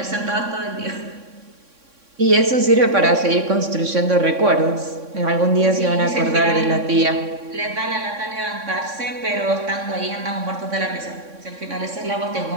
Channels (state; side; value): late; left; 3.6 ms